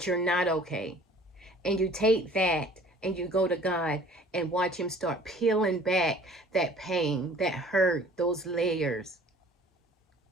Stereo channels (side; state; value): both; normal; correlation 0.51